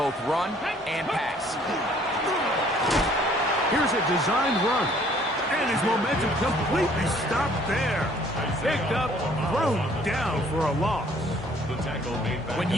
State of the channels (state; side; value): normal; both; correlation 0.59